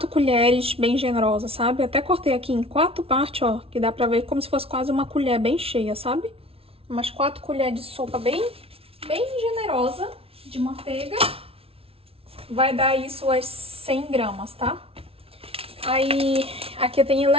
colheres bem generosas, sabe? Até cortei aqui em 4 partes, ó, que dá pra ver como se fosse quase uma colher bem cheia, sabe? Umas 4 colheres de sopa bem generosa de manteiga. Vai dar isso as 100 gramas, tá? Aí, aqui tem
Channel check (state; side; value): late; left; 0.27 ms